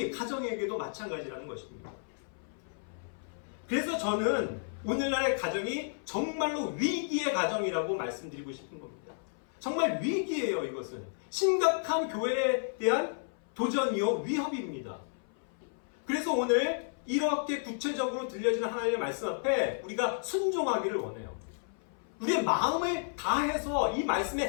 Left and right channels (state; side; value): silent; right; 56 dB below the other